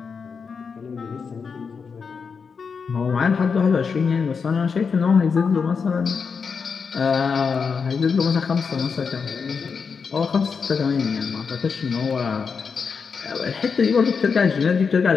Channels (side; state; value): right; quieter; 5.6 dB